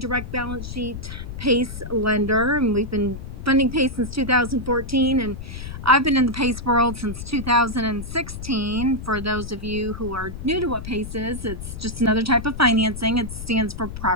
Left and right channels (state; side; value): noise; left; rumble, 9 dB below the sound